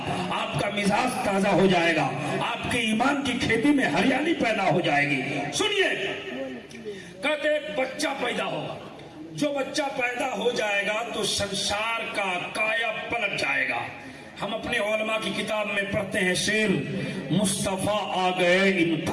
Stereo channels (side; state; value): both; identical; correlation 1.00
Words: آپ کا مزاج تازہ ہو جائے گا، آپ کے ایمان کی کھیتی میں ہریالی پیدا ہو جائے گی. سنیے، کہتے ایک بچہ پیدا ہوگا، جو بچہ پیدا ہو جائے گا تو سنسار کا کایا پلٹ جائے گا. ہم اپنے علماء کی کتاب میں پڑھتے ہیں شعر، مصطفیٰ آ گئے